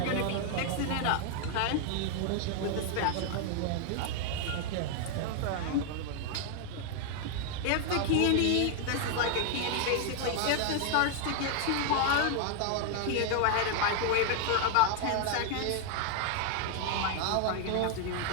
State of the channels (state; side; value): different; both; correlation 0.00